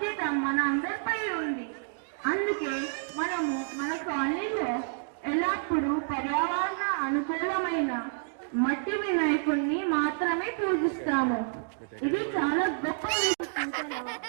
మన అందరిపై ఉంది. అందుకే మనము మన కాలనీలో ఎల్లప్పుడూ పర్యావరణ అనుకూలమైన మట్టి వినాయకుడిని మాత్రమే పూజిస్తాము. ఇది చాలా గొప్ప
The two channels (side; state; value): left; silent; digital silence